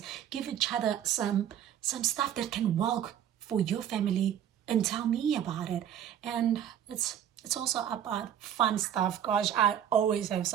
give each other some stuff that can work for your family, and tell me about it. And it's also about fun stuff. Gosh, I always have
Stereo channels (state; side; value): quieter; left; 9.9 dB